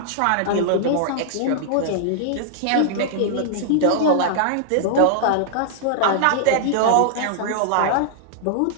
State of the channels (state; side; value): different; both; correlation -0.01